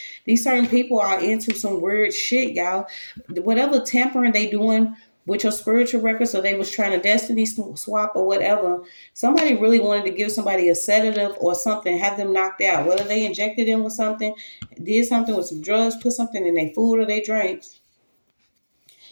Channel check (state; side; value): inverted; both; correlation -1.00